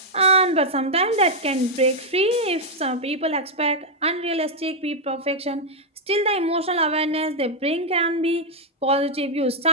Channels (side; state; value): both; normal; correlation -0.02